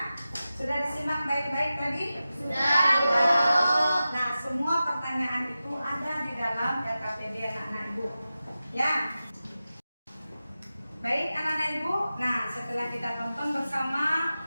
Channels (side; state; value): both; inverted; correlation -0.94